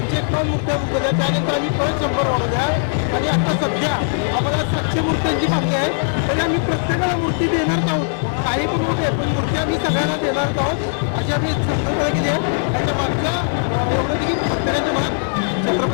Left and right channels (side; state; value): right; silent; digital silence